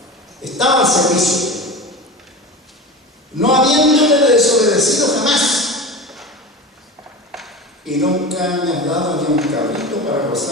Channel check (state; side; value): normal; both; correlation 0.29